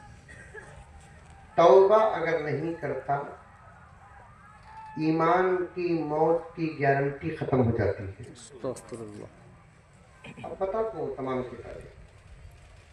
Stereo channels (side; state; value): both; identical; correlation 1.00